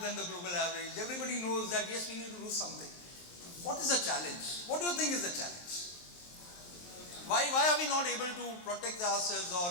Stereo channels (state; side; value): late; right; 23 ms